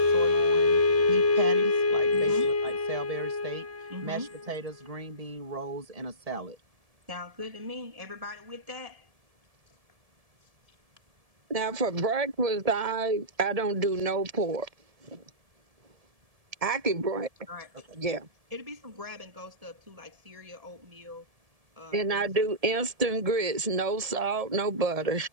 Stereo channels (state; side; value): late; left; 1.7 ms